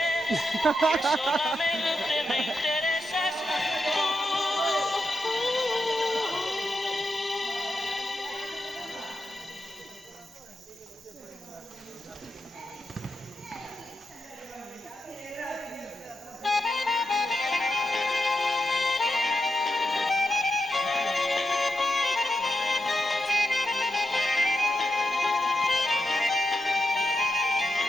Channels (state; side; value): normal; both; correlation 0.86